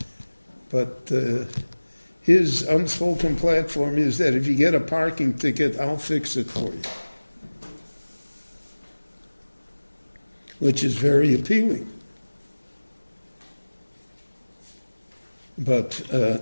but his unspoken platform is that if you get a parking ticket, I'll fix it for you. Which is very appealing. But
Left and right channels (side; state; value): both; inverted; correlation -1.00